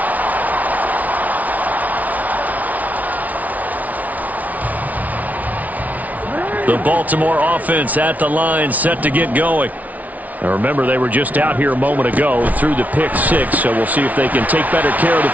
The Baltimore offense at the line, set to get going. Now remember, they were just out here a moment ago through the pick 6, so we'll see if they can take better care of the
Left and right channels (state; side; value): late; left; 0.073 ms